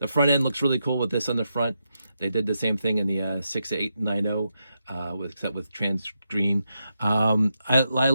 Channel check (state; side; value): inverted; both; correlation -0.85